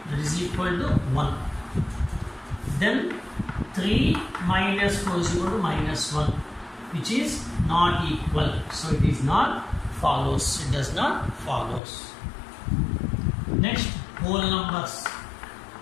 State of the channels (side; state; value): right; drops out; at 11.8 s